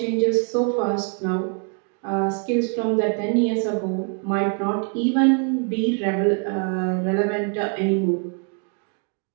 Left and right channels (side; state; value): left; quieter; 37.5 dB